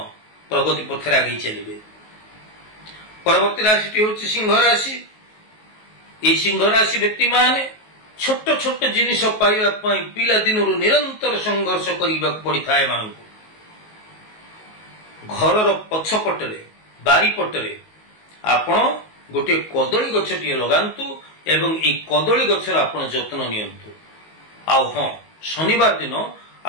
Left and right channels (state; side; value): late; right; 19 ms